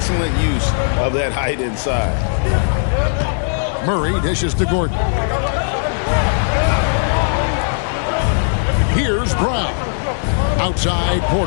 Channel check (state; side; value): silent; right; digital silence